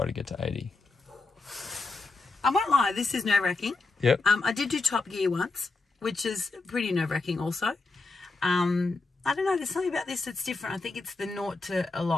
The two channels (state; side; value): quieter; right; 3.6 dB